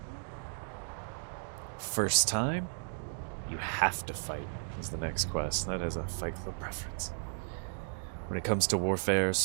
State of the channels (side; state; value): left; silent; digital silence